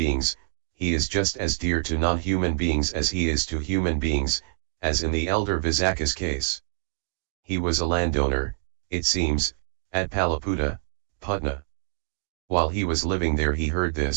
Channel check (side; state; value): left; silent; 59 dB below the other